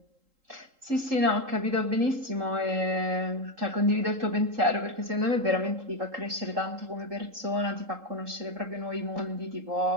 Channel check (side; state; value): left; late; 3.8 ms